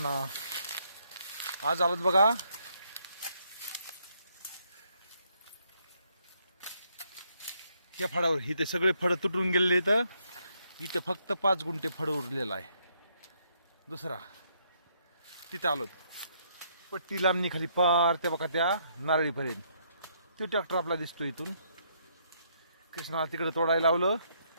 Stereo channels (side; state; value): both; inverted; correlation -0.71